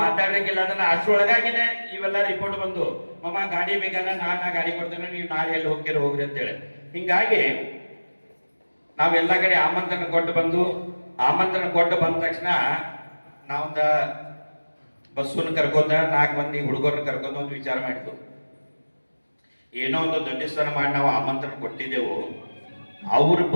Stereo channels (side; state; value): both; inverted; correlation -1.00